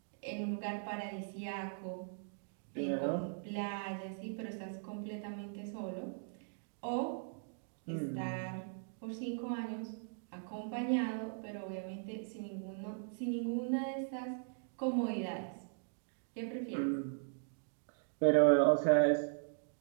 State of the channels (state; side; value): silent; left; digital silence